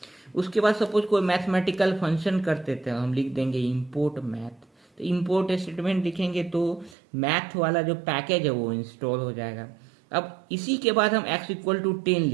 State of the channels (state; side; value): drops out; left; at 7.0 s